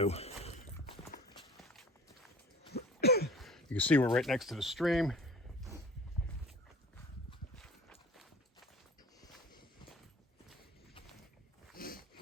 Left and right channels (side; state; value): both; normal; correlation 0.43